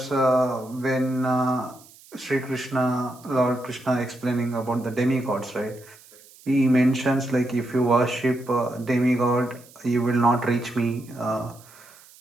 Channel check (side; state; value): right; noise; hiss, 24 dB below the sound